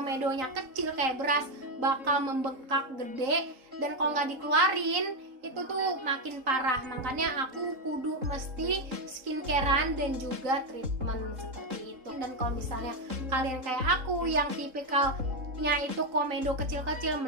kecil kayak beras bakal membengkak gede, dan kalau nggak dikeluarin itu tuh makin parah. Makanya aku kudu mesti skincarean dan juga treatment seperti itu. Dan kalau misalnya kalian kayak aku yang tipikalnya itu komedo kecil-kecil,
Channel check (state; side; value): late; left; 3.9 ms